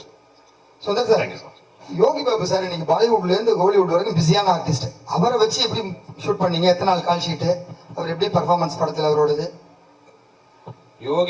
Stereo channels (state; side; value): identical; both; correlation 1.00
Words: Sundar sir, Yogi Babu sir இன்னைக்கு பாலிவுட்ல இருந்து ஹாலிவுட் வரைக்கும் பிஸியான ஆர்டிஸ்ட். அவரை வச்சு எப்படி ஷூட் பண்ணீங்க? எத்தனை நாள் கால் ஷீட்டு? அவர் எப்படி பர்ஃபார்மன்ஸ் படத்தில் அவரோடது?